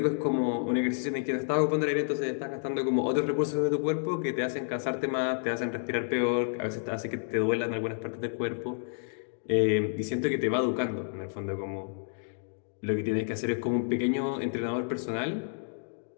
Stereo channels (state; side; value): silent; right; digital silence